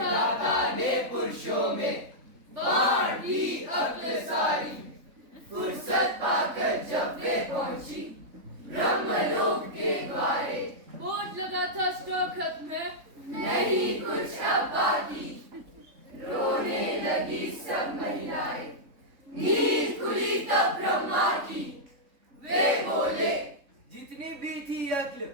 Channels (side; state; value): left; late; 3.6 ms